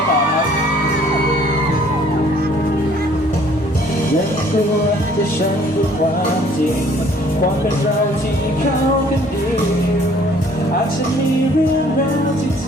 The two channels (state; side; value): normal; both; correlation 0.58